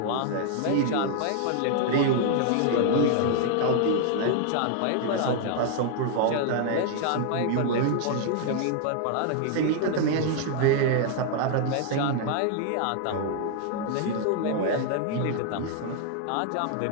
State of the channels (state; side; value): different; both; correlation 0.00